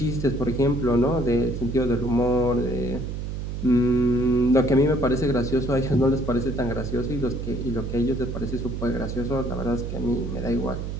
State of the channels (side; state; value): right; noise; hum, 5 dB below the sound